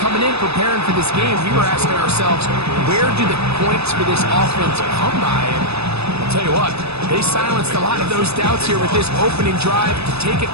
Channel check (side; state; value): left; late; 0.79 ms